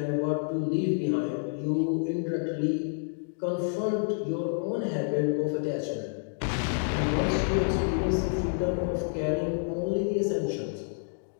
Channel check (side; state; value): right; silent; digital silence